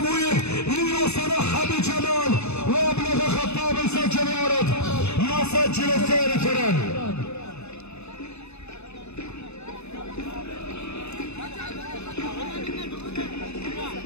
ليصنعها بجمال وأبلغ خطاب يسجل يارد يسجل الثاني فران.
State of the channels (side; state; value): right; late; 0.80 ms